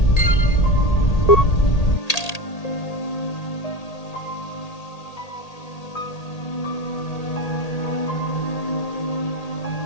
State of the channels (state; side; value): late; right; 1.8 ms